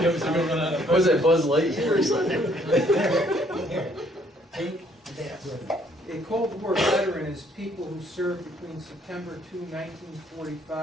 Was it Buzz Lightyear or something? Here, take that with you. A Cold War veteran is people who served between September 2,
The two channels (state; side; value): normal; both; correlation 0.65